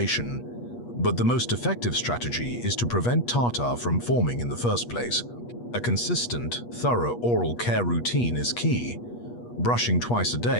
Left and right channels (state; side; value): late; right; 8.3 ms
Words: But the most effective strategy is to prevent tartar from forming in the first place. A consistent, thorough oral care routine is key. Brushing twice a